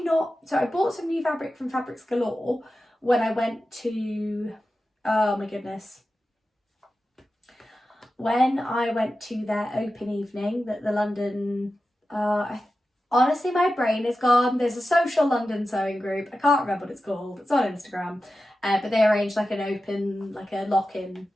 not, so I bought some new fabric from Fabrics Galore when I went to, oh my goodness, when I went to their open evening that the London, honestly my brain is gone, there's a social London sewing group, I can't remember what it's called, it's on Instagram, but they arranged like an open, like a lock-in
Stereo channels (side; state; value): both; normal; correlation 0.92